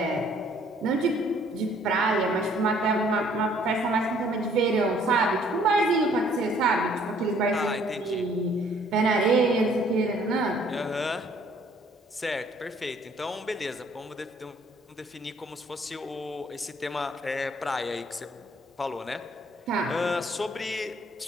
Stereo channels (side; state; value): both; normal; correlation 0.60